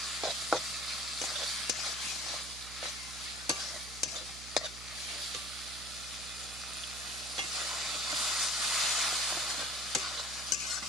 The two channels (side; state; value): right; noise; hum, 14 dB below the sound